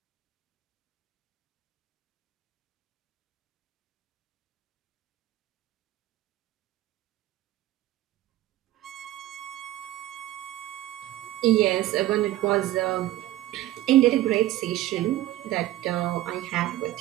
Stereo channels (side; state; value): left; quieter; 15.2 dB